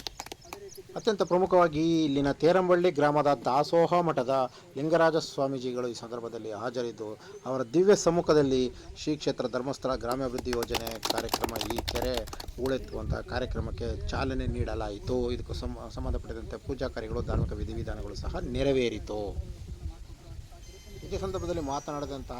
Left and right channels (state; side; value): identical; both; correlation 1.00